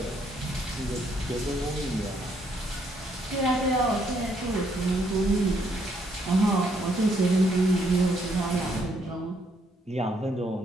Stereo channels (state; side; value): normal; both; correlation 0.71